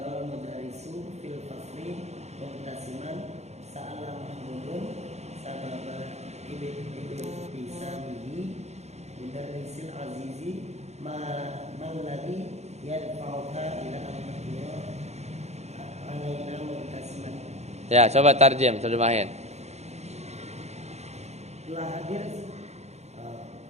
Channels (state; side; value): late; left; 0.32 ms